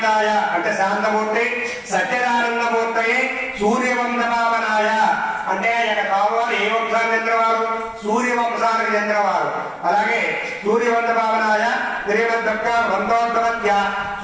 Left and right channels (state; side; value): identical; both; correlation 1.00